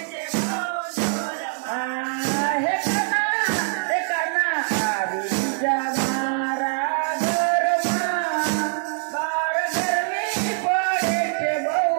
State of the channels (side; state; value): left; silent; 63 dB below the other